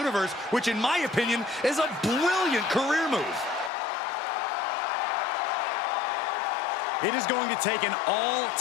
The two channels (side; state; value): right; drops out; at 3.7 s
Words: which in my opinion is a brilliant career move. It is going to take an